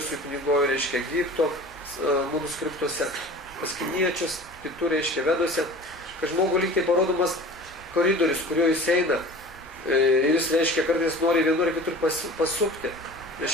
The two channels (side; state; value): both; normal; correlation 0.40